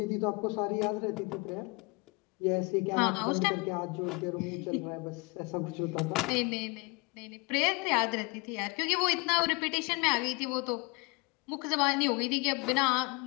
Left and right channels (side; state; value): right; quieter; 28.7 dB